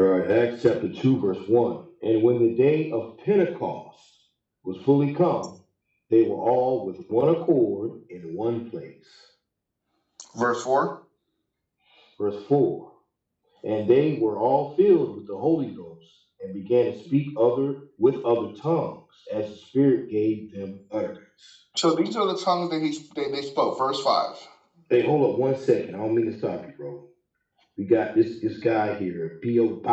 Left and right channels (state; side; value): identical; both; correlation 1.00